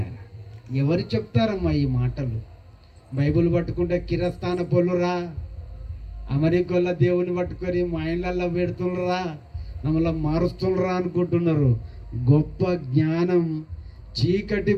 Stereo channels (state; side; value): identical; both; correlation 1.00